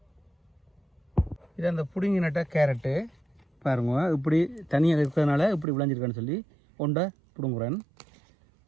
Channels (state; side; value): drops out; left; at 5.7 s